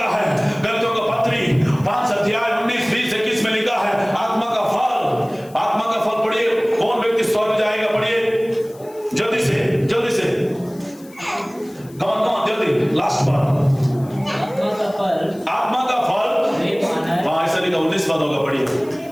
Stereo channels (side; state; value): left; noise; hiss, 25 dB below the sound